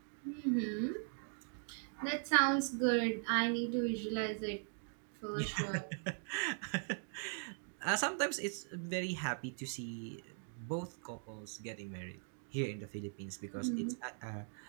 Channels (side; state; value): left; silent; 51 dB below the other